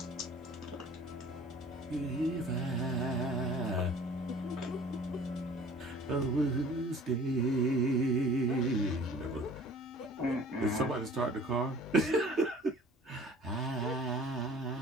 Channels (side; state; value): both; normal; correlation 0.48